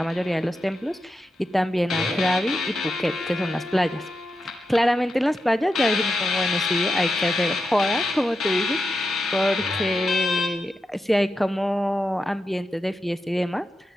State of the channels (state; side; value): normal; both; correlation 0.88